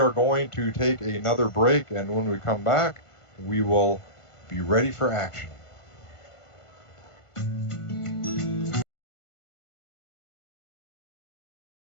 going to take another break, and when we come back, we will be ready for action.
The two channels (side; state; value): right; late; 1.5 ms